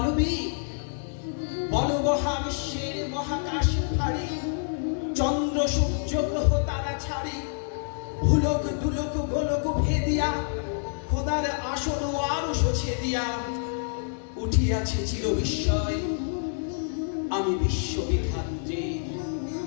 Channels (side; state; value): right; silent; 60 dB below the other